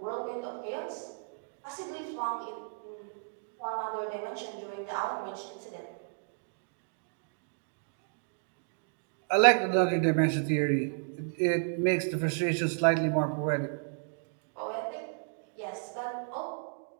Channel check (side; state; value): left; silent; digital silence